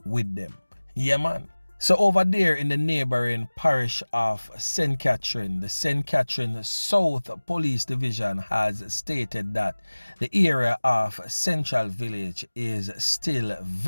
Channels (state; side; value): inverted; both; correlation -1.00